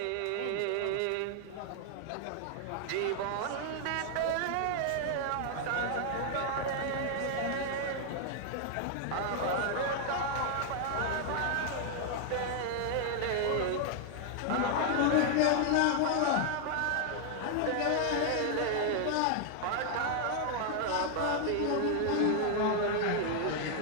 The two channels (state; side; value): different; both; correlation 0.00